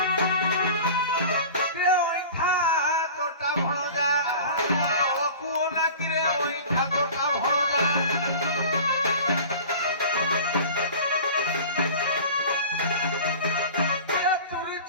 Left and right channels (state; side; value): inverted; both; correlation -0.38